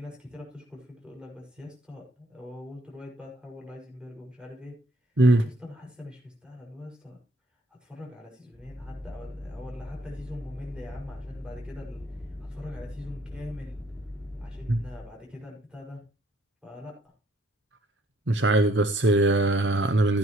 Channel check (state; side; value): normal; both; correlation 0.63